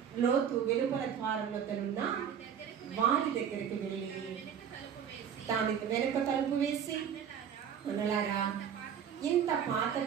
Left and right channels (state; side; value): quieter; left; 8.2 dB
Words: లోతు వెలుపల ద్వారం వద్దనున్న వారి దగ్గరికి వెళ్ళి దాని వెనుక తలుపు వేసి, అనలారా ఇంత